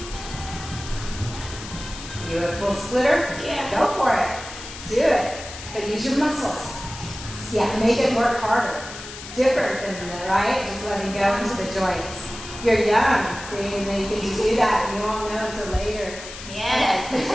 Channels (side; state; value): left; noise; hiss, 12 dB below the sound